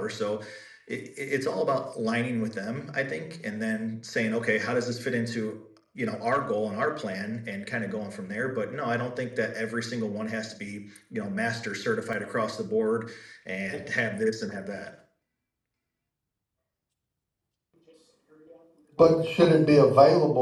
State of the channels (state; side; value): identical; both; correlation 1.00